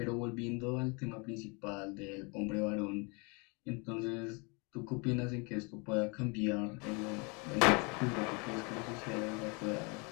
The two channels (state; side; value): quieter; right; 31.5 dB